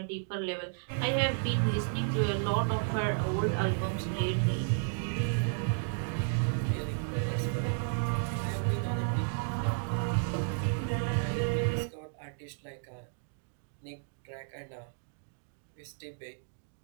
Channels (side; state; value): left; silent; digital silence